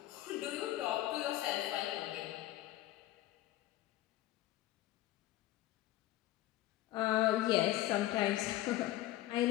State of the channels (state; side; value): quieter; right; 15.3 dB